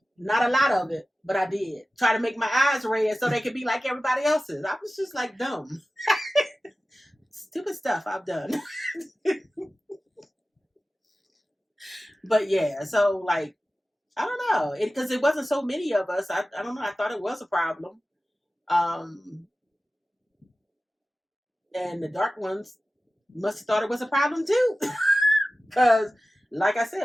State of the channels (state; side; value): normal; both; correlation 0.95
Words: Not a lot of it, but I did. Try to make my eyes red so they could be like everybody else's. I was just like dumb. Stupid stuff I've done. But yeah, so like, I don't know. Because it wasn't so many of us. I don't know. I thought it was a problem. And the dark ones must have thought it was a problem too. Because, like I